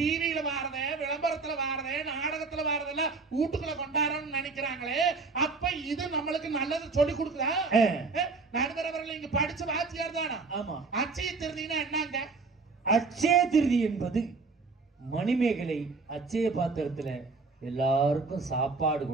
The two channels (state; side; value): quieter; left; 4.2 dB